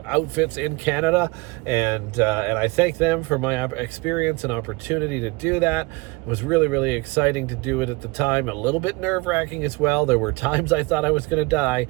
outfits in Canada, and I thank them for my experience and opportunity to do that. It was really, really exciting to do it at the time. A little bit nerve-wracking as well. There were times I thought I was going to die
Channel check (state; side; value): quieter; left; 24.6 dB